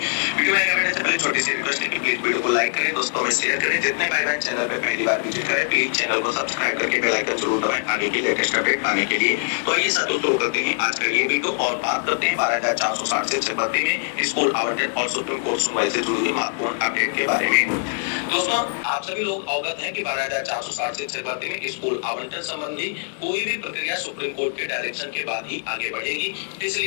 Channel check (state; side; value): silent; right; digital silence